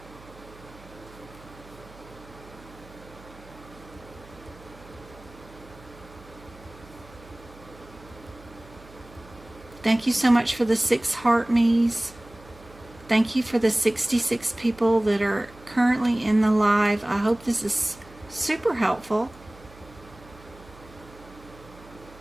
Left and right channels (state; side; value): noise; right; hum, 22 dB below the sound